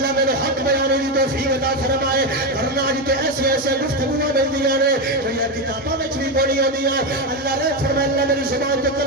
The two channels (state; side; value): normal; both; correlation 0.11